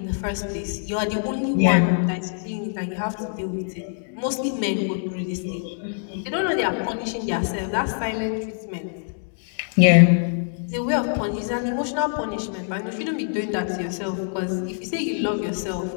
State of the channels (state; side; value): silent; right; digital silence